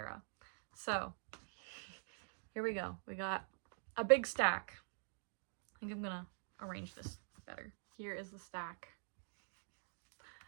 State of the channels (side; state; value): left; silent; digital silence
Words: So here we go. We got a big stack. I think I'm gonna arrange this better. Here is the stack.